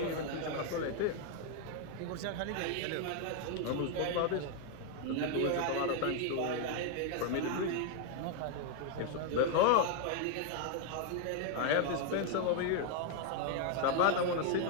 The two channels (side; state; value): both; different; correlation 0.00